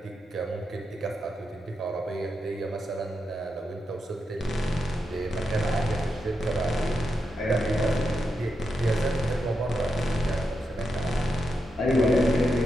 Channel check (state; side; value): normal; both; correlation 0.86